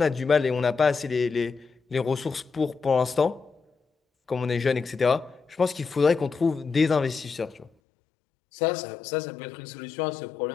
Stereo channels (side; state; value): right; drops out; at 7.7 s